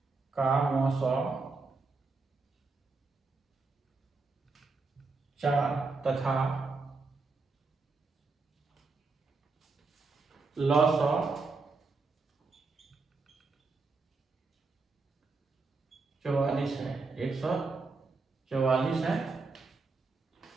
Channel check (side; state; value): left; quieter; 3.9 dB